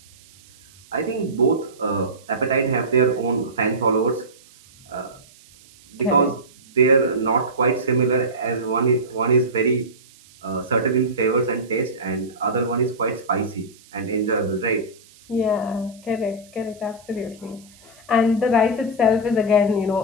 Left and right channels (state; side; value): noise; right; hiss, 26 dB below the sound